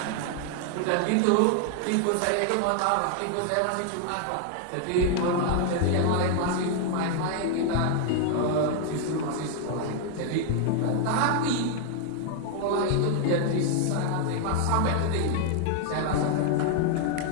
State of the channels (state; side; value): different; both; correlation 0.00